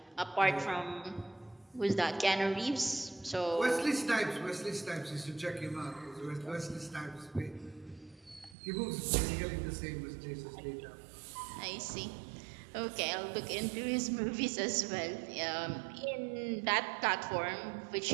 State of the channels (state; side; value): drops out; left; at 8.6 s